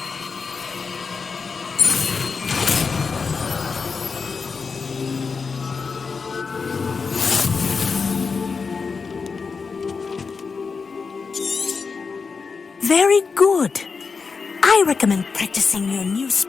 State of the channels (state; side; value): quieter; right; 5.0 dB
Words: Very good. I recommend practicing your new